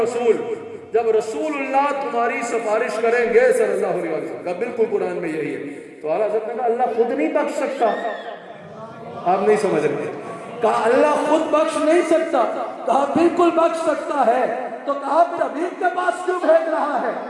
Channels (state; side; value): identical; both; correlation 1.00